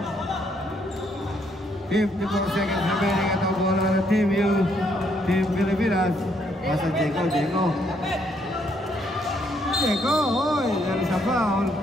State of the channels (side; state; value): both; normal; correlation 0.71